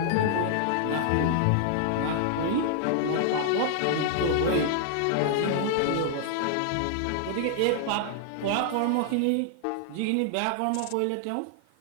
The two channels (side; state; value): both; different; correlation -0.01